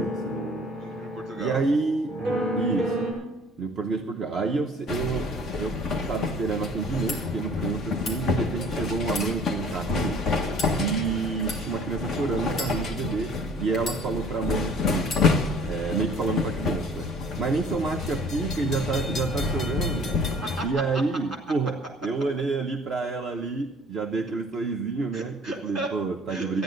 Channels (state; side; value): normal; both; correlation 0.51